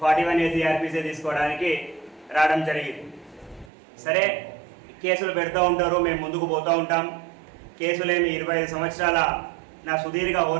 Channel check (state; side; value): drops out; left; at 3.7 s